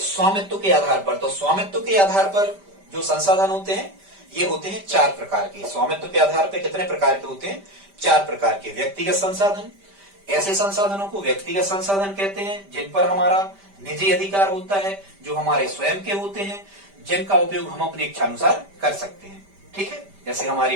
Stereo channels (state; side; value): late; left; 5.1 ms